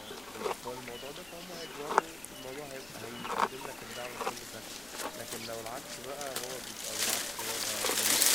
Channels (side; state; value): left; noise; rumble, 22 dB below the sound